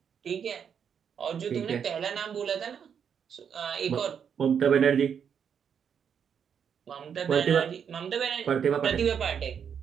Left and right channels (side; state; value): left; quieter; 7.5 dB